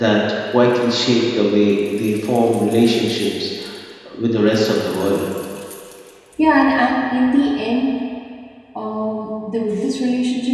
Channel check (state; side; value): identical; both; correlation 1.00